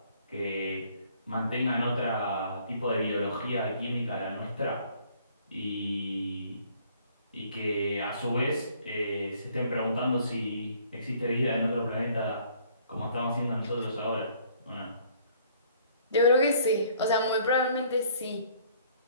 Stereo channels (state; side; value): inverted; both; correlation -0.60